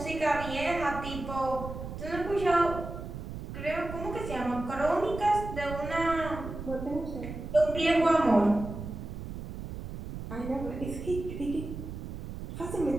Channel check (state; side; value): noise; right; rumble, 8 dB below the sound